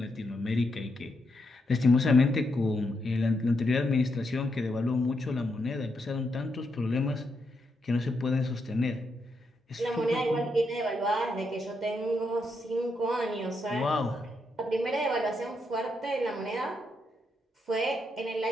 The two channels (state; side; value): normal; both; correlation 0.81